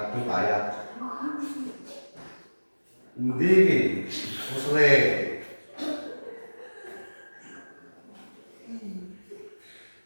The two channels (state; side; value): inverted; both; correlation -1.00